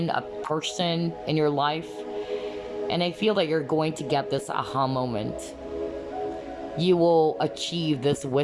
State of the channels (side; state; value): both; identical; correlation 1.00